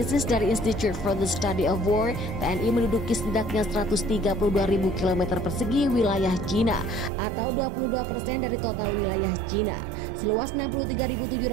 dari Institute for the Study of War, TNI menduduki setidaknya 132.000 km persegi wilayah Cina atau 22% dari total wilayah Cina, seluas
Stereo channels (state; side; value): drops out; left; at 7.1 s